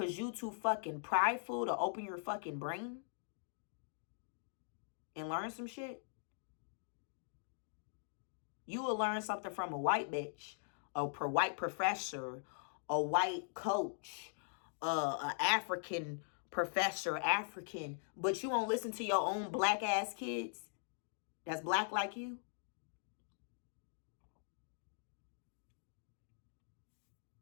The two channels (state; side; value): silent; right; digital silence